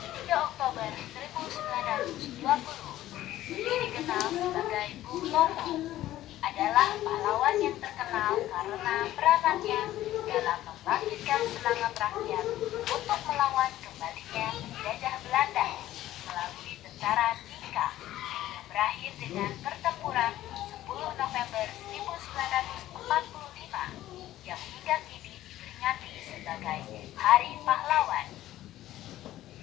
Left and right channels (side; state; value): right; quieter; 14.2 dB